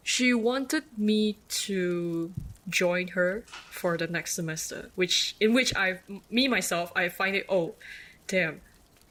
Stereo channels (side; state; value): both; identical; correlation 1.00